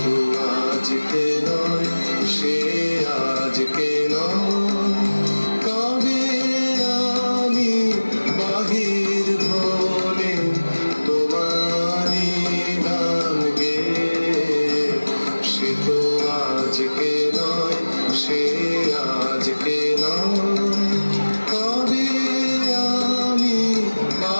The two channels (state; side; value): inverted; both; correlation -1.00